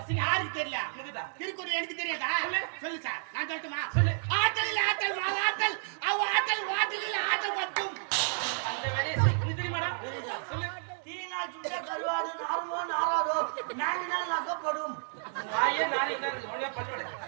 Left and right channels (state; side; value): silent; left; digital silence